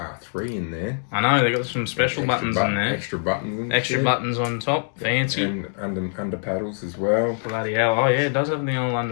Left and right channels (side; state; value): right; silent; digital silence